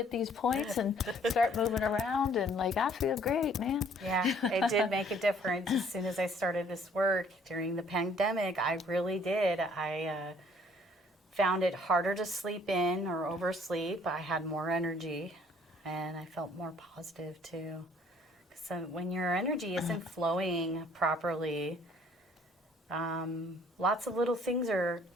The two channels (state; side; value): normal; both; correlation 0.59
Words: these points and start moving around and I feel great, man. Yeah, it did make a difference. As soon as I started this work during the pandemic, I really did. I found it harder to sleep in or oversleep. I had more energy, and I felt more positive too. So when your energy isn't flowing properly, lots of little things are